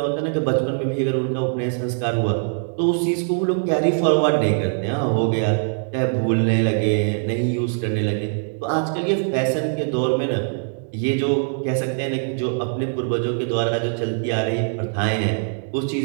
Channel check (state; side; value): silent; left; digital silence